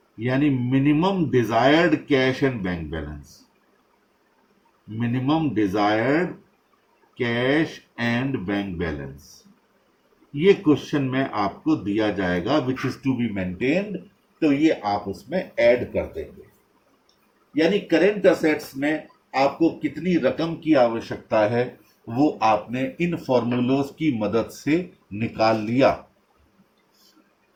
यानी minimum desired cash and bank balance. Minimum desired cash and bank balance ये क्वेश्चन में आपको दिया जाएगा, which is to be maintained, तो ये आप उसमें ऐड कर देंगे। यानी करेंट असेट्स में आपको कितनी रकम की आवश्यकता है वो आपने इन फॉर्मूलोज की मदद से निकाल लिया।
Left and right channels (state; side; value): identical; both; correlation 1.00